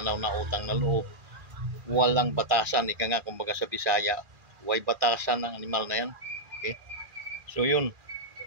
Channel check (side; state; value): left; late; 2.4 ms